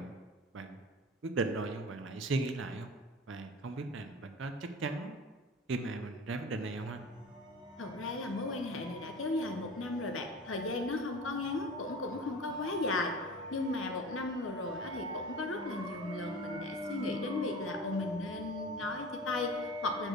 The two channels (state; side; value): normal; both; correlation 0.36